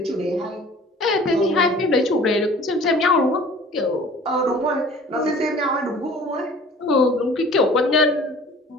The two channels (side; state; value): both; normal; correlation 0.47